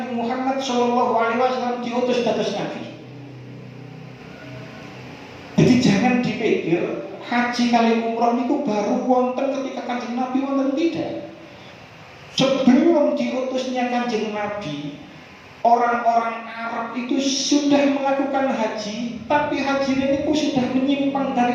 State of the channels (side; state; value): both; identical; correlation 1.00